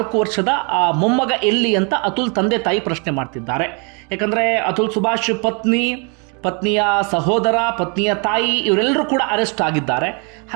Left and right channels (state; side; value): quieter; left; 34.7 dB